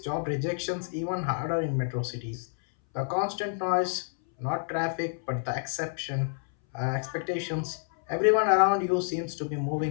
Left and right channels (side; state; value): right; silent; 59 dB below the other